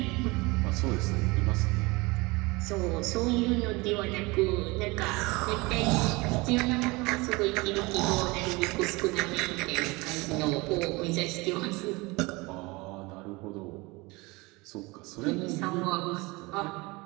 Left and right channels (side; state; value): left; quieter; 24.2 dB